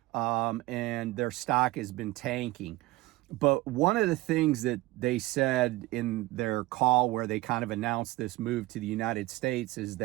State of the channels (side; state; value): left; quieter; 19.5 dB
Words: and their stock has been tanking. But one of the things that they said in their call where they kind of announced this move to the United States is